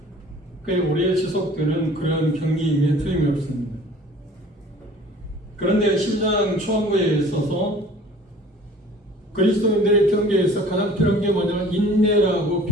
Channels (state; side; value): normal; both; correlation 0.49